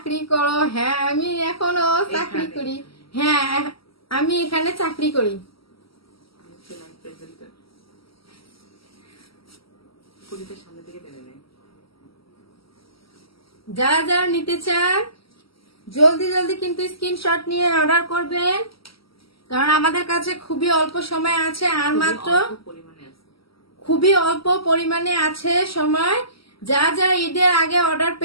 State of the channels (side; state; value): right; late; 0.75 ms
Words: করো? হ্যাঁ, আমি এখনো চাকরি করি। হ্যাঁ, আমি এখানে চাকরি করি। যারা যারা নিতে চান জলদি জলদি কিন্তু স্ক্রিনশট নিয়ে অর্ডার করবেন, কারণ আমাদের কাছে খুবই অল্প সময় আছে, আর মাত্র খুবই অল্প পরিমাণে আছে সময়। যা যা ঈদের আগে অর্ডার